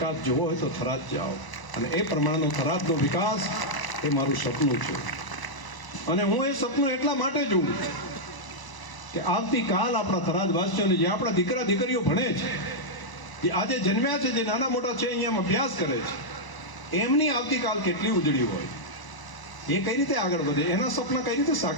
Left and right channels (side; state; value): right; late; 1.0 ms